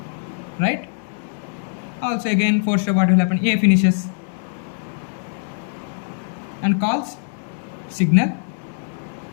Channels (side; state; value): right; silent; digital silence